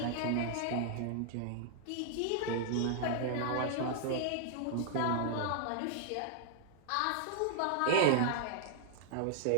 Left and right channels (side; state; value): both; different; correlation -0.01